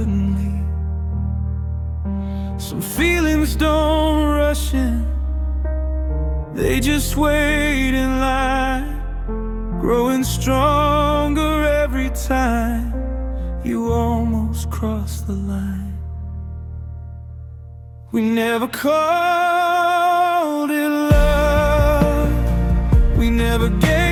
leave. Some feelings don't rush in, they just wait in line, growing stronger every time you almost cross the line. We never called it love, we never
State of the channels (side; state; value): both; identical; correlation 1.00